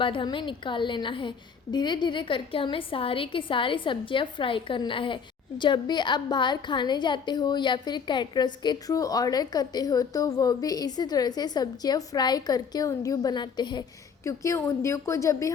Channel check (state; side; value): quieter; right; 6.3 dB